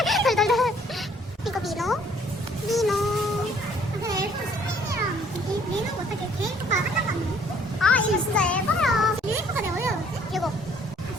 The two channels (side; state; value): both; normal; correlation 0.61